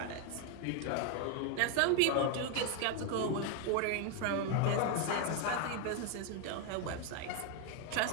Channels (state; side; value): different; both; correlation 0.01